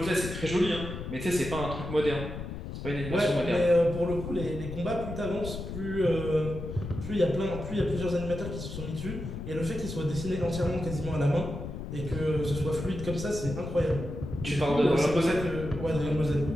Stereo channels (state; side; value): noise; left; rumble, 7 dB below the sound